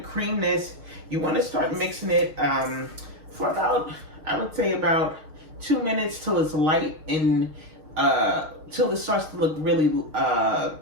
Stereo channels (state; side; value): late; left; 6.4 ms